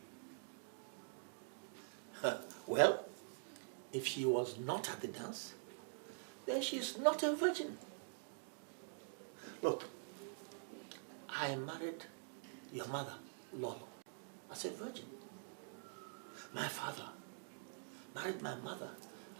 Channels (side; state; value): left; silent; digital silence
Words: Well, if she was not at the dance, then she's not a virgin. Look, I married your mother, Lolo, as a virgin. My father married my mother